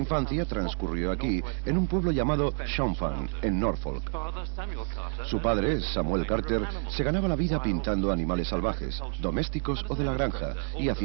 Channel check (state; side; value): silent; left; 59 dB below the other